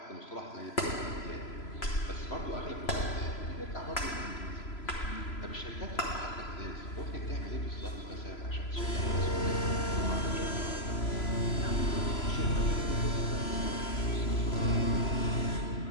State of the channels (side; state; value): right; late; 3.0 ms